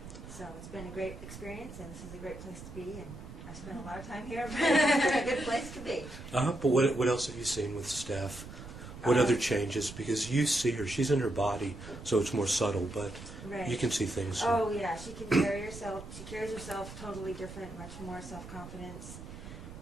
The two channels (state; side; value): noise; right; rumble, 13 dB below the sound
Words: So it's been a great experience, and this is a great place to be, and I spent a lot of time here, but it's a good place to be. But what else have you seen with Steph? What other changes? Because you see her, she's in her body, so it's more subtle, but Right. you can see things. Oh yeah, she can carry herself. She carries herself totally different, much more self-confidence,